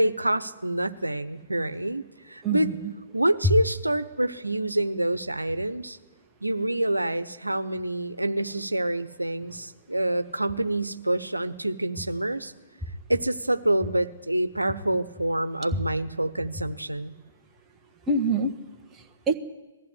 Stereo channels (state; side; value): inverted; both; correlation -0.82